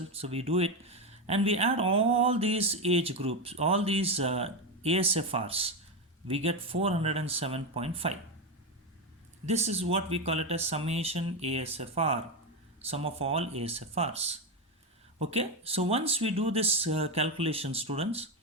so we do it, and we add all these age groups, all these ASFRs, we get 407.5. This is what we call it as summation ASFR, sum of all ASFRs. Okay, so once we do this calculation, students,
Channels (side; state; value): both; normal; correlation 0.12